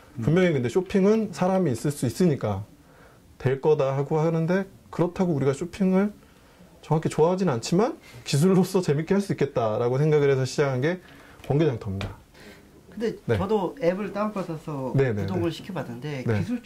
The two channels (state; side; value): identical; both; correlation 1.00